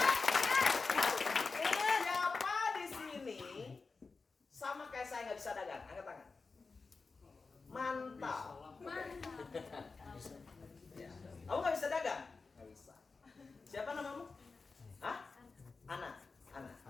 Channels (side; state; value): right; quieter; 4.3 dB